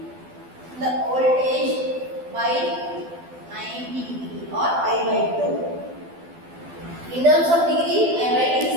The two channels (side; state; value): left; late; 12 ms